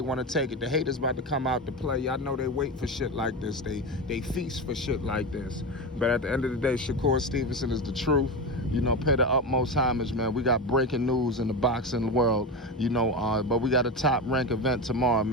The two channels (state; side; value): normal; both; correlation 0.20